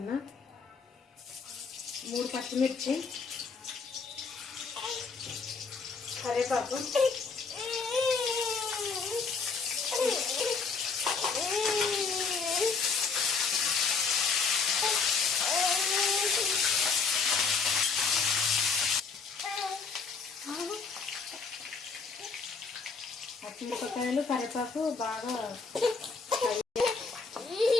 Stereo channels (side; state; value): right; quieter; 4.9 dB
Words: 3 పచ్చిమిర్చి, కరివేపాకు, పచ్చిమిరపకాయలు, కరివేపాకు బాగా